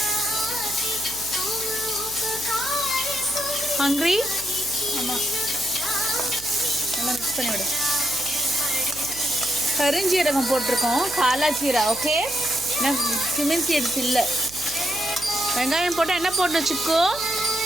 ஹங்க்ரி? ஆமாம், நல்லா மிக்ஸ் பண்ணி விடு. கருஞ்சீரகம் போட்டிருக்கோம், காலா ஜீரா. ஓகே, நான் கியூமின் சீட்ஸ் இல்லை. வெங்காயம் போட்டால் என்ன போடணும் சிக்கோ?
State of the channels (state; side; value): noise; right; hum, 18 dB below the sound